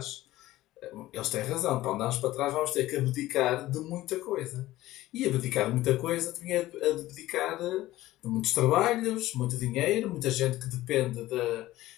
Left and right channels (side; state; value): right; quieter; 16.2 dB